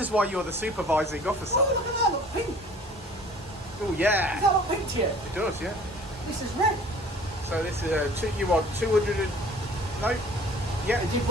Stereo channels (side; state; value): both; normal; correlation 0.48